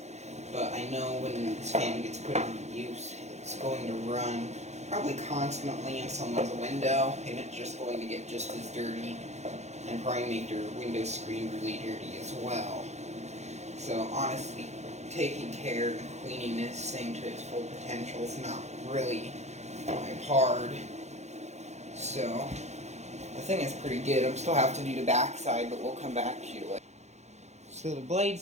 but I know when this fan gets put into use, it's going to run probably constantly in someone's window, and it's just going to get just as dirty, and probably make their window screen really dirty as well. So honestly, taking care and cleaning this thing to its full potential is not really hard. So the thing is pretty good. I still have to do the back side, but we'll come back to you later. So the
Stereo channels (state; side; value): late; left; 0.33 ms